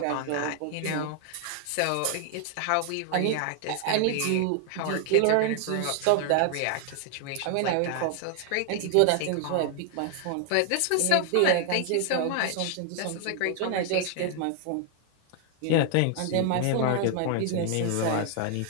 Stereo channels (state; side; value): different; both; correlation 0.00